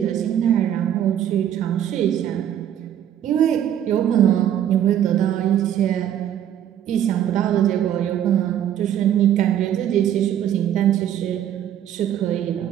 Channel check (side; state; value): left; quieter; 10.4 dB